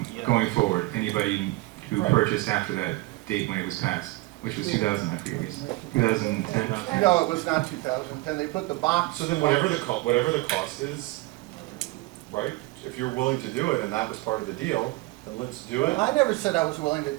going forward, anybody who Right. purchased after that date when it was passed, which was 2000, I forget, 2010. No, it was not 2010, they put the box. So then whatever the cost is, right? If you're willing to do it and that was part of the deal, then let's do it. I never said I was willing to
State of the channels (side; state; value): left; quieter; 21.4 dB